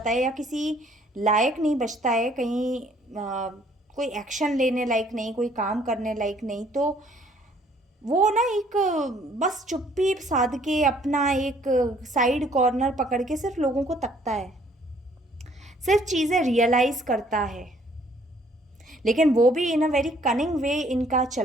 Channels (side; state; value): both; normal; correlation 0.61